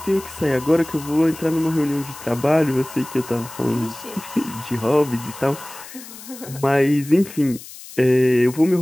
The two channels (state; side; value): noise; left; hiss, 16 dB below the sound